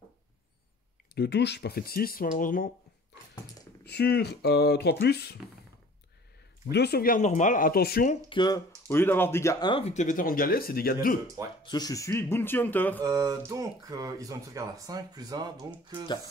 2 touches, pas fait de 6, malheureusement. Sur 3+. 2 sauvegardes normales. Attention que, au lieu d'avoir dégâts 1, vu que t'es vétéran de galet, c'est dégâts 2. Ouais. Parce que je suis Bounty Hunter. Donc, ils ont une sauvegarde à 5 plus 1, donc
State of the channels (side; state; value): both; normal; correlation 0.48